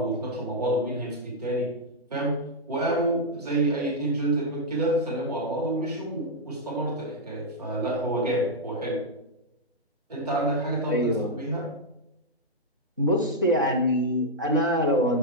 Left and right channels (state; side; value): normal; both; correlation -0.04